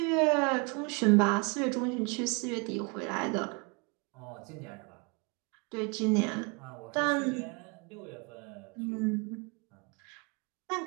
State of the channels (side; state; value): left; quieter; 31.6 dB